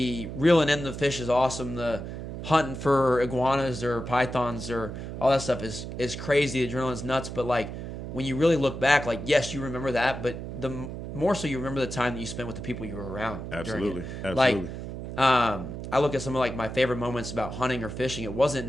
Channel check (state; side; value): noise; right; hum, 8 dB below the sound